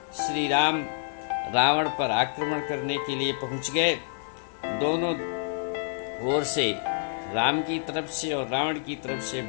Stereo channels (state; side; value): silent; right; 60 dB below the other